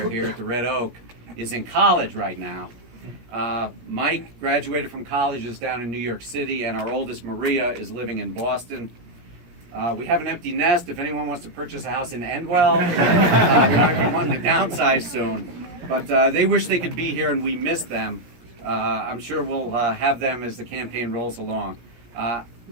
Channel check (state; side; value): late; left; 17 ms